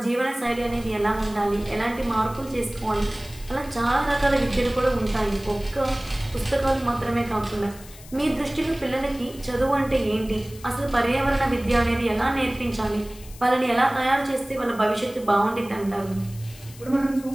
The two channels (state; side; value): noise; left; hiss, 19 dB below the sound